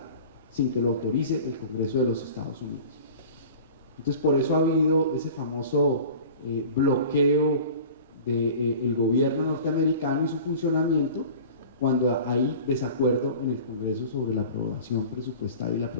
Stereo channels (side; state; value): both; inverted; correlation -0.40